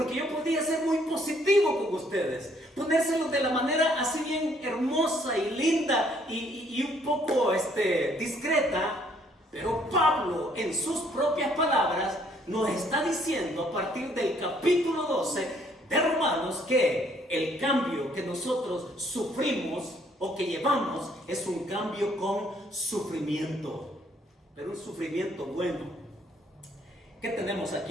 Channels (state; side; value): normal; both; correlation 0.65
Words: yo podría ser muy positivo con ustedes, ponérselo de la manera así bien hermosa y linda y un poco discreta. Pero Pablo, en sus propias palabras, nos está diciendo a partir del capítulo 12 de Romanos que el cambio que nosotros sufrimos o que llevamos es un cambio con sufrimiento, pero un sufrimiento bueno. ¿Qué tenemos